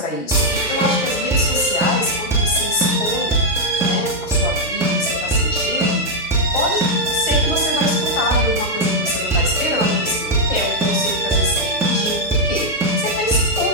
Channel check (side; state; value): both; normal; correlation -0.02